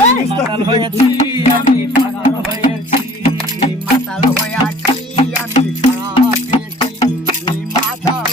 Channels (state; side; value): normal; both; correlation 0.50